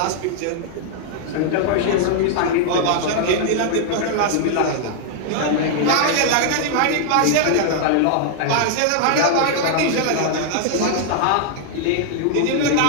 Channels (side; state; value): both; different; correlation 0.00